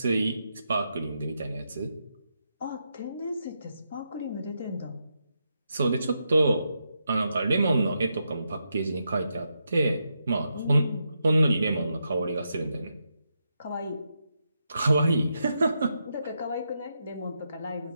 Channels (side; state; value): both; inverted; correlation -0.83